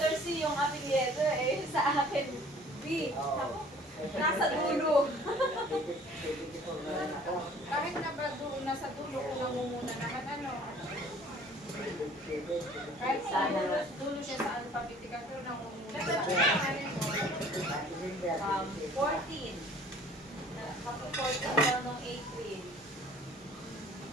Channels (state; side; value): normal; both; correlation 0.52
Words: B. Oo. Nasa dulo. Kahit na ba doon, nasa dulo ko namumuna naman ano. Kahit sa dulo siya sa alphabetical, pero namumuna. 14. Kapag 14 daw nung April.